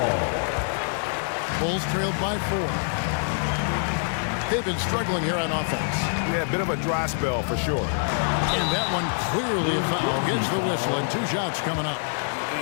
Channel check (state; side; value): silent; right; digital silence